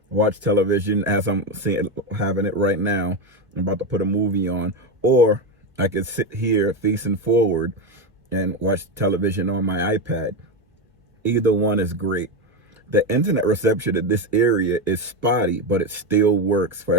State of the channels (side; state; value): both; normal; correlation 0.13